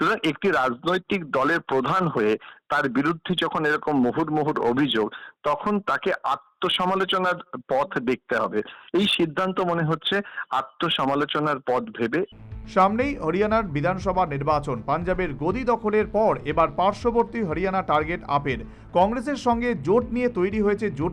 একটি রাজনৈতিক দলের প্রধান হয়ে তার বিরুদ্ধে যখন এরকম মুহুর্মুহুর অভিযোগ, তখন তাকে আত্মসমালোচনার পথ দেখতে হবে। এই সিদ্ধান্ত মনে হচ্ছে আত্মসমালোচনার পথ ভেবে। সামনেই হরিয়ানার বিধানসভা নির্বাচন। পাঞ্জাবের গদি দখলের পর এবার পার্শ্ববর্তী হরিয়ানা টার্গেট আপের। কংগ্রেসের সঙ্গে জোট নিয়ে তৈরি হয়েছে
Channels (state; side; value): identical; both; correlation 1.00